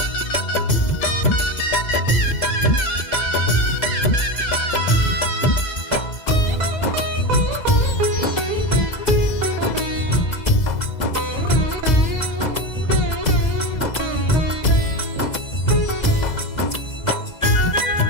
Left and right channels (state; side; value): late; right; 2.0 ms